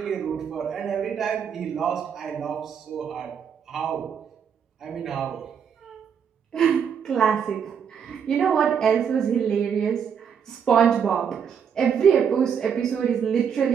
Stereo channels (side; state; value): left; quieter; 7.5 dB